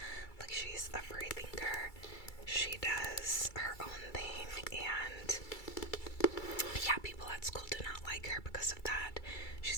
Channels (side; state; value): right; late; 2.3 ms